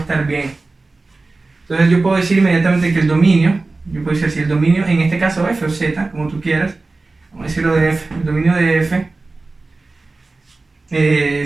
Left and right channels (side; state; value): left; quieter; 3.5 dB